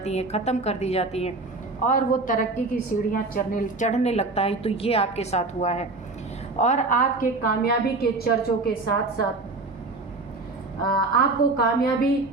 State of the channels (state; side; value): quieter; left; 3.4 dB